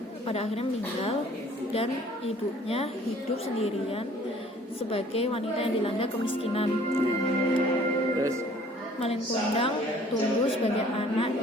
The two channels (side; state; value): both; normal; correlation 0.54